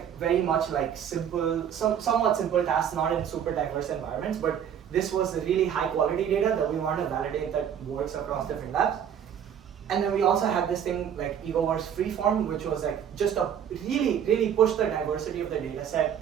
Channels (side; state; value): left; quieter; 8.8 dB